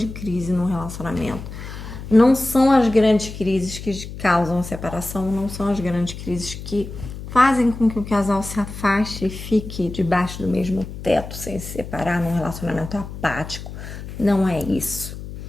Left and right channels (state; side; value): noise; left; hum, 11 dB below the sound